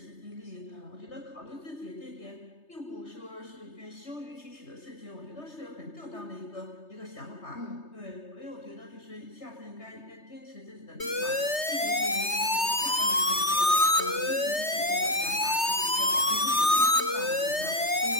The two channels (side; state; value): right; late; 3.3 ms